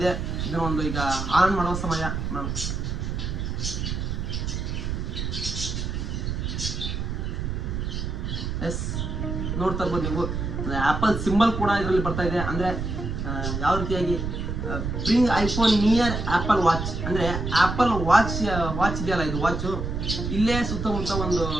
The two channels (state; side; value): noise; right; rumble, 3 dB below the sound